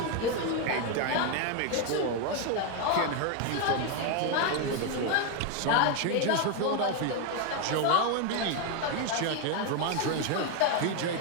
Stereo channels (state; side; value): different; both; correlation 0.01